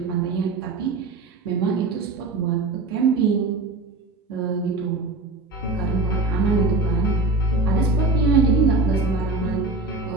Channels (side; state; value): left; quieter; 3.2 dB